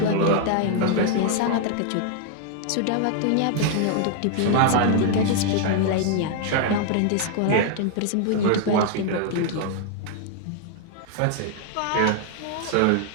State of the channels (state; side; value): different; both; correlation 0.00